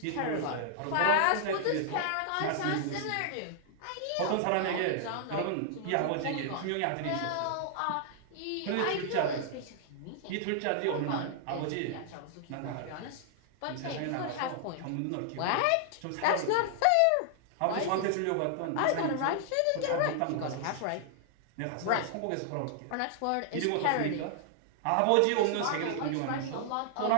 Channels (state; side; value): different; both; correlation -0.01